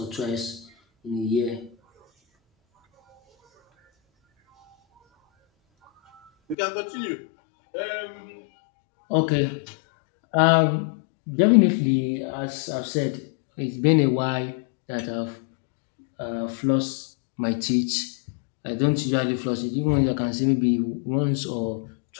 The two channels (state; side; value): drops out; right; at 6.6 s